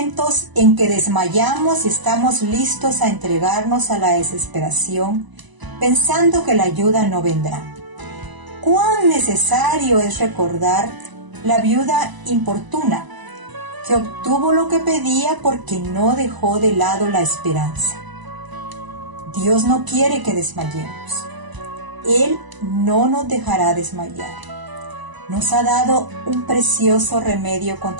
en que desmayamos y estamos listos a entregarnos a la desesperación, pensando que la ayuda no vendrá. Cuán necesario es recordar la viuda importuna, que obtuvo lo que pedía porque no dejó de lado la esperanza. Dios no quiere que desmayemos. Él no nos dejará desmayar. Nos ha dado un precioso remedio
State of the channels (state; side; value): late; left; 1.0 ms